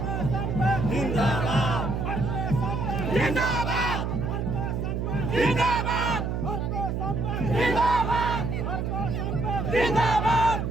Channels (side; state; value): right; noise; hum, 1 dB below the sound